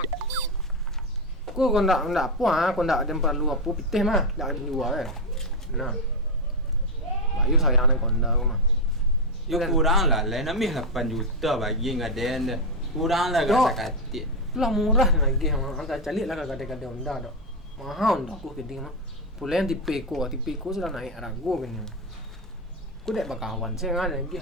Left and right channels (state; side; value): normal; both; correlation 0.07